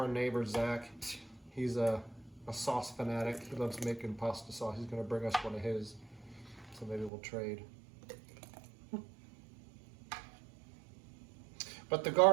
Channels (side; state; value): left; drops out; at 7.1 s